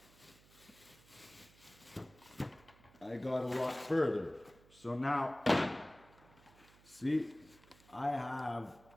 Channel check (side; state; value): right; noise; hum, 25 dB below the sound